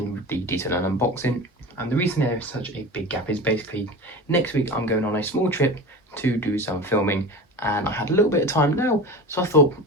the detail and unboxing. And the reason there is such a big gap is basically next week I'm going on a small trip to do some filming, and I had a little bit of time now, so I thought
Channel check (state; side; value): normal; both; correlation 0.31